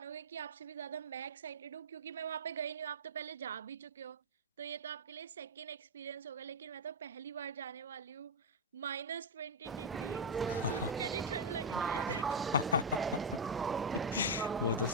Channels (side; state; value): both; normal; correlation 0.00